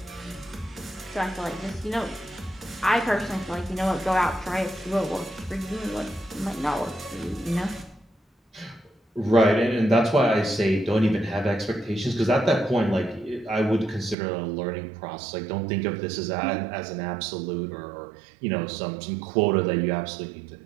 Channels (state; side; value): drops out; left; at 14.2 s